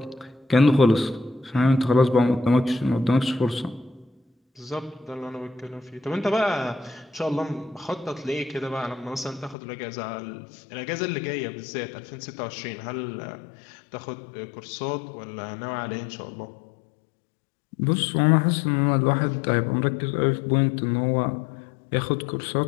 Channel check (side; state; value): right; drops out; at 9.6 s